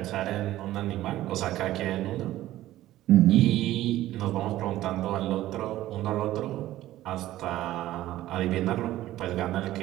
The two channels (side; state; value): left; quieter; 14.8 dB